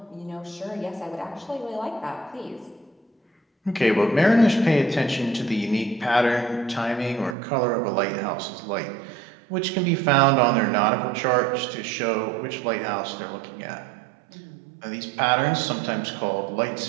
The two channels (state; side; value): drops out; left; at 7.4 s